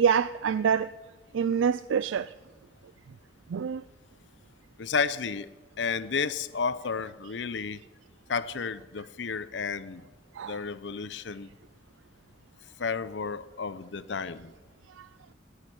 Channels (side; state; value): both; normal; correlation -0.17